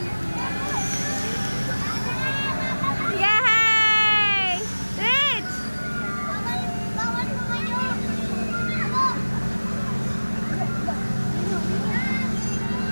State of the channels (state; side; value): inverted; both; correlation -1.00